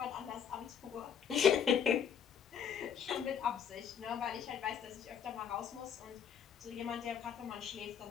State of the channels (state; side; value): quieter; right; 8.0 dB